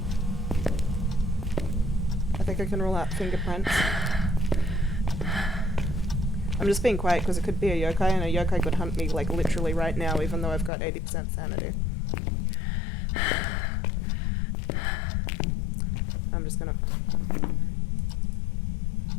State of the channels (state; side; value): drops out; right; at 10.7 s